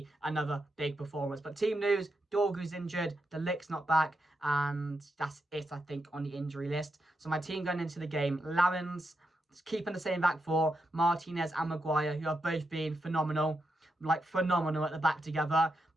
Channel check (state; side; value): normal; both; correlation 0.85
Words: another big performance. But team news, Dorgu's injured, De Ligt's not back, and that's it, I think, on the injury list. So my team going into the game, Lammens, keeping the same back 4, Martinez and Maguire, who have both been phenomenal. Like phenomenal at the back together.